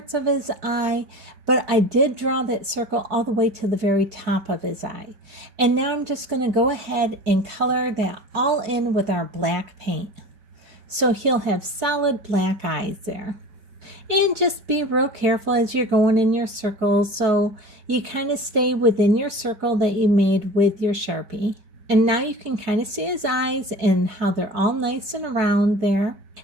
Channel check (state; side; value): late; left; 4.7 ms